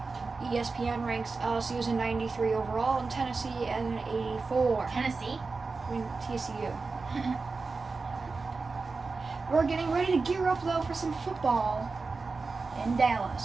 ESPN ranks LSU as a 93 overall and Tennessee as an 84. Tennessee? I mean, TCU. We're getting ready to gear up, though, for some football in Dallas.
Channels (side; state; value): left; quieter; 4.1 dB